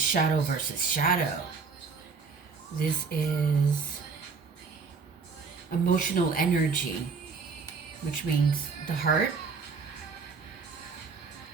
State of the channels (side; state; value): left; quieter; 5.0 dB